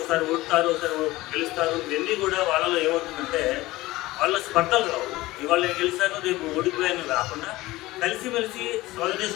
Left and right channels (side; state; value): right; quieter; 18.6 dB